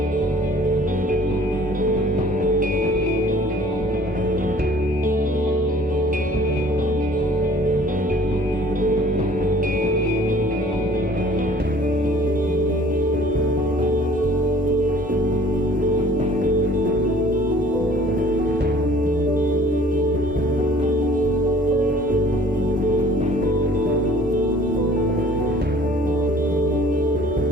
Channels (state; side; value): normal; both; correlation 0.52